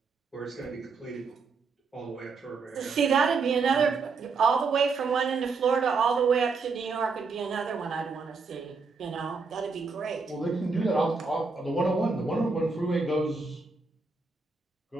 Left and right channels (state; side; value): quieter; left; 4.5 dB